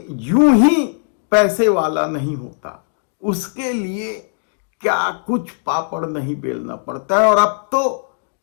यूं ही पैसे वाला नहीं होता, उसके लिए क्या कुछ पापड़ नहीं बेलना पड़ता है। और अब तो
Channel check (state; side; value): silent; right; digital silence